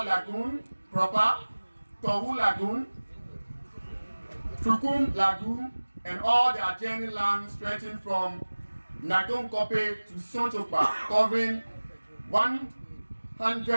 Lagoon proper, Tohu Lagoon, Trukum Lagoon, and all the adjoining land stretching from Nagum Kope to Sonchopa, covering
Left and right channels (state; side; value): inverted; both; correlation -1.00